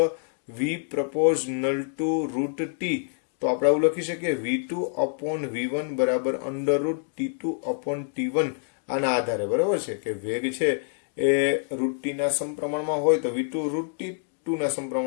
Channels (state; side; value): silent; right; 61 dB below the other